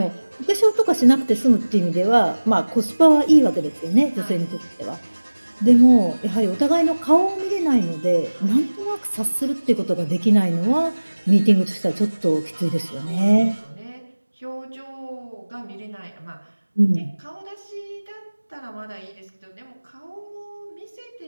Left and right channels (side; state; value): both; inverted; correlation -1.00